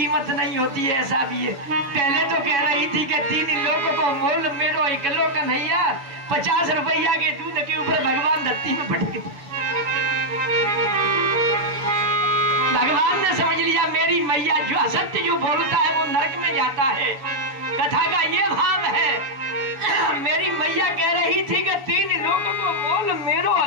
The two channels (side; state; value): left; late; 7.1 ms